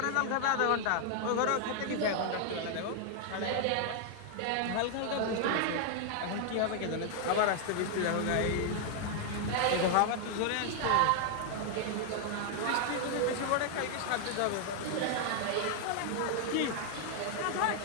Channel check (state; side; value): different; both; correlation 0.00